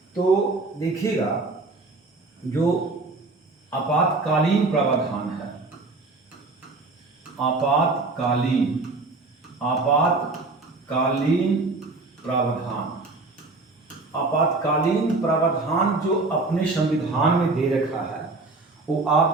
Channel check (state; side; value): quieter; left; 3.5 dB